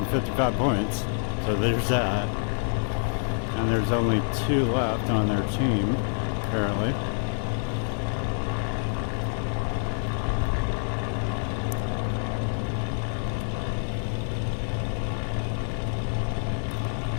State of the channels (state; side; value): silent; right; digital silence